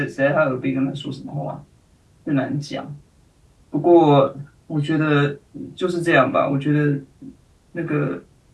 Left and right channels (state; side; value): identical; both; correlation 1.00